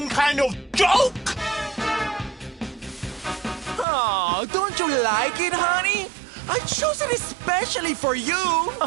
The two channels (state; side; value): drops out; left; at 3.9 s